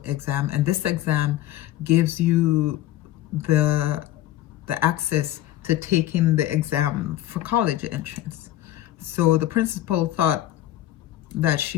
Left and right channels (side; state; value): right; quieter; 13.9 dB